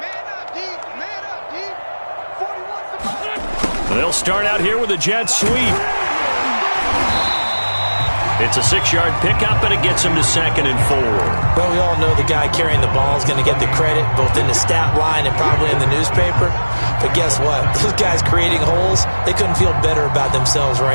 They'll start out here with a jet sweep. It's a 6-yard pickup, and it gets him to 2nd and 4. Well, we all know the guy carrying the ball is going to get the credit, both in the stat line and probably in the newspaper. But guess what? Those guys creating holes, they couldn't feel better about themselves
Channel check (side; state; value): both; inverted; correlation -1.00